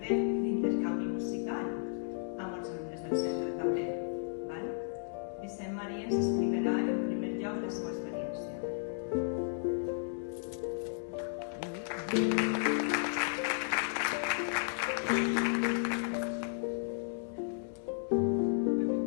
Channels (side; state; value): right; silent; digital silence